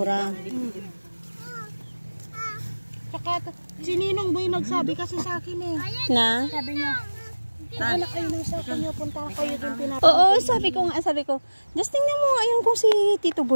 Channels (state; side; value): inverted; both; correlation -1.00